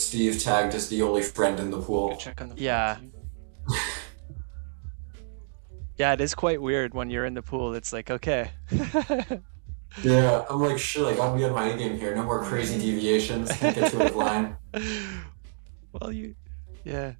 tagged as the only friend in the pool. Good check on the flop, Yeah. too. Yeah, it is quite weird when you're in the pool. It's like, okay. Yeah, I'm like, shit, I gotta be on my A game here. No more crazy deviations. Can't get to a line. Well, yeah.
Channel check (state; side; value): silent; left; digital silence